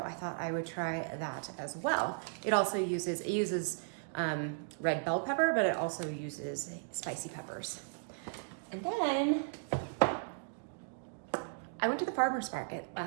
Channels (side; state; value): left; silent; digital silence